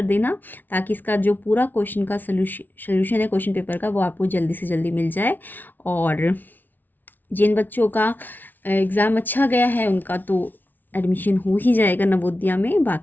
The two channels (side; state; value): right; late; 0.086 ms